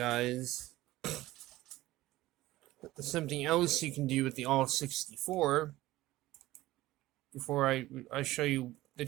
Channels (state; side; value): quieter; left; 17.0 dB